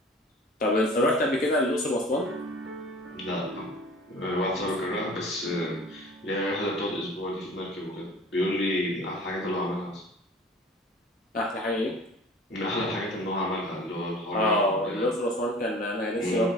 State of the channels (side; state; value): both; normal; correlation 0.44